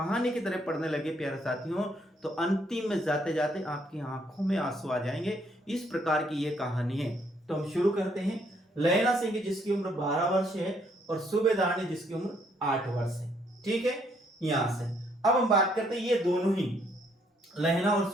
की तरह पढ़ने लगे प्यारे साथियों, तो अंतिम में जाते जाते आपकी आंखों में आंसू आ जाएंगे। इस प्रकार की ये कहानी है। तो हम शुरू करते हैं। लहना सिंह जिसकी उम्र 12 वर्ष है और सूबेदारनी जिसकी उम्र 8 वर्ष है। ठीक है, यहां से अब हम बात करते हैं ये दोनों ही लहना और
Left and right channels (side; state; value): both; normal; correlation 0.69